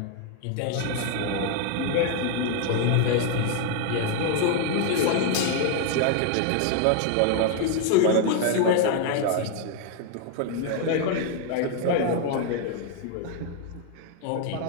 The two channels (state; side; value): different; both; correlation 0.01